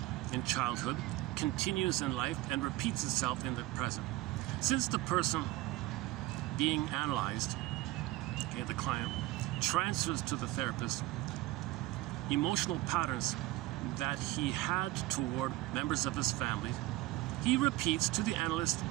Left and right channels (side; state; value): left; quieter; 17.7 dB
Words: in childhood, continues in life, and repeats itself in the present. Since the person being analyzed, okay, the client, transfers to the therapist emotional patterns that he had toward members of his family, he repeats to the analyst